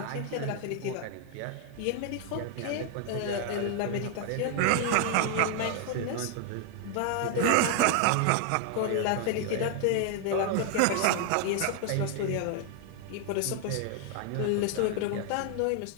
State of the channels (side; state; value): both; different; correlation 0.00